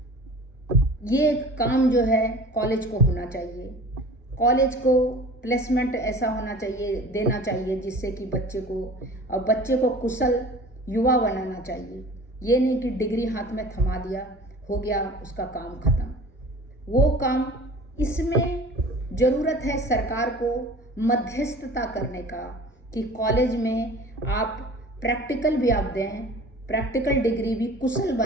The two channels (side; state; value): both; normal; correlation 0.42